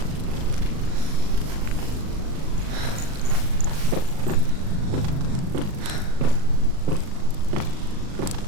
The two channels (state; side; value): late; left; 38 ms